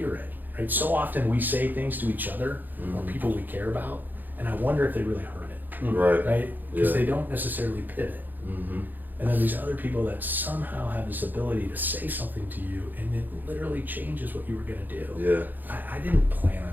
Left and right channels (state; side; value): late; left; 0.087 ms